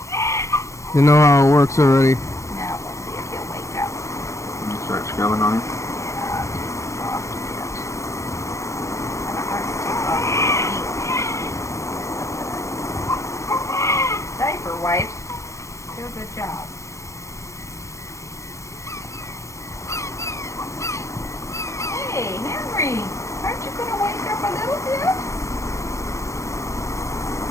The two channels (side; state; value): right; late; 0.15 ms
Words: They know how it works already. Now we'll see if he'll wake up. You start scrubbing on him. Yeah, it's soft a bit. Kind of hard to take off the ink. Diaper wipes do a good job. Hey, Henry, aren't you going to wake up a little bit?